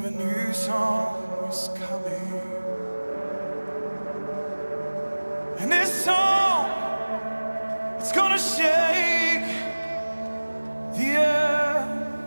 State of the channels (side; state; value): both; inverted; correlation -1.00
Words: a new song is coming. And this song, it's gonna shake the